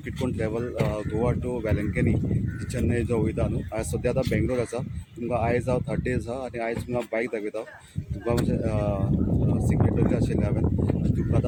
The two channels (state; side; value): identical; both; correlation 1.00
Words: कितकोन ट्रॅवल गोवा टू वेलंकनी चेन्नई जो वयता न्हू हांव सद्या आतां बेंगलोर आसा तुमकां आयज हांव 30 आहा आनी आयज तुमकां बायक दाखयता तुमकां म्हणजे सिक्रेटरी आशिल्लें हांवें तुमकां